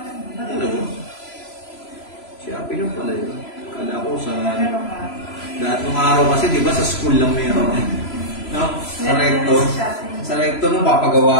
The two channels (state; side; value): late; right; 3.0 ms